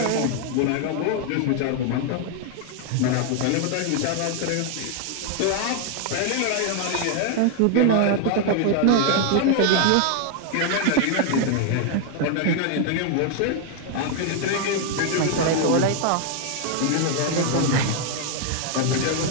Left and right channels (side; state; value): both; different; correlation 0.00